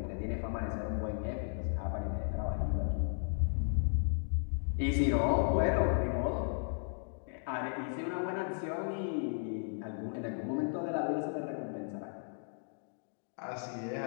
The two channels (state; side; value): silent; right; digital silence